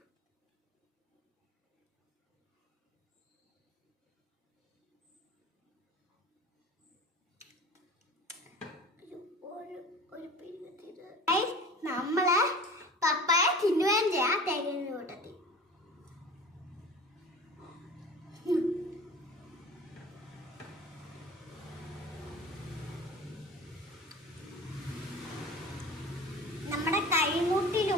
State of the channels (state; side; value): normal; both; correlation 0.39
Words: നമ്മളെ പപ്പായ തിന്നുകയും ചെയ്യാം തേങ്ങ കൂട്ടത്തിൽ. നമ്മുടെ